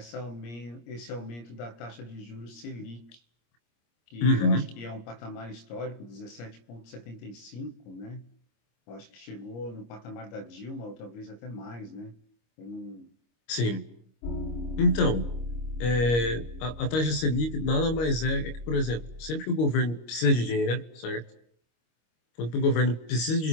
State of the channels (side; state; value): right; late; 25 ms